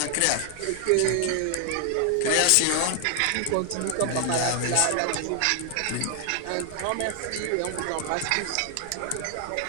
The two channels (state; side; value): different; both; correlation 0.00